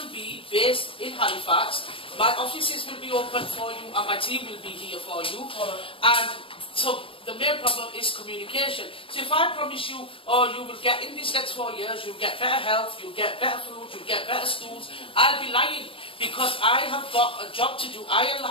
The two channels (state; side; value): late; right; 0.26 ms